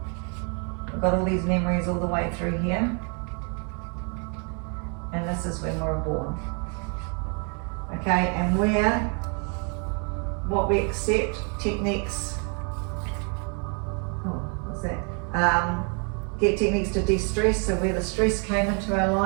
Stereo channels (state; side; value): quieter; left; 38.5 dB